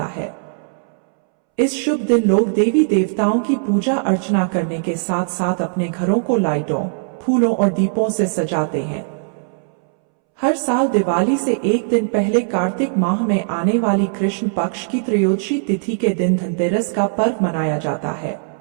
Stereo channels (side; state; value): left; silent; 66 dB below the other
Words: है। इस शुभ दिन लोग देवी देवताओं की पूजा अर्चना करने के साथ साथ अपने घरों को लाइटों, फूलों और दीपों से सजाते हैं। हर साल दिवाली से एक दिन पहले कार्तिक माह में आने वाली कृष्ण पक्ष की त्रयोदशी तिथि के दिन धनतेरस का पर्व मनाया जाता है।